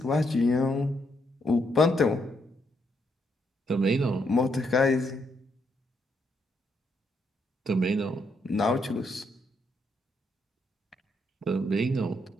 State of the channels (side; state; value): both; normal; correlation 0.76